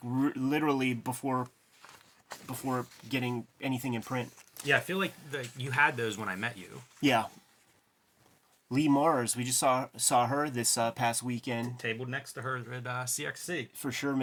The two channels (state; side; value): identical; both; correlation 1.00